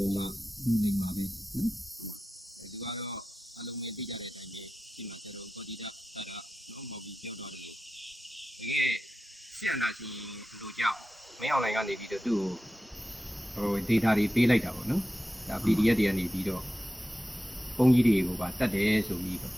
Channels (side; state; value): both; normal; correlation 0.93